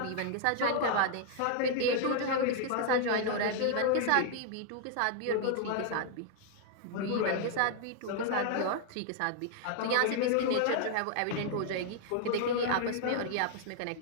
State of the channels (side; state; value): both; different; correlation 0.00